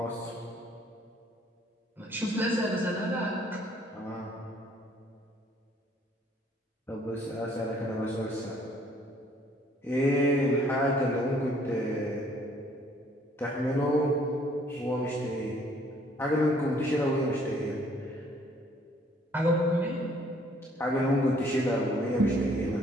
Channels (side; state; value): both; normal; correlation 0.61